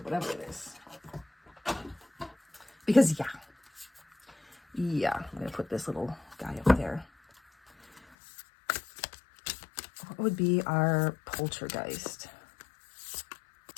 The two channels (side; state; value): right; drops out; at 8.0 s